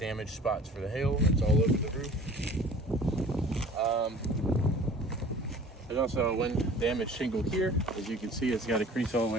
spots for the hail. It's all over the roof. There's also a wind damaged shingle here. As you can see, it's got a crease all the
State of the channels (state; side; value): normal; both; correlation 0.46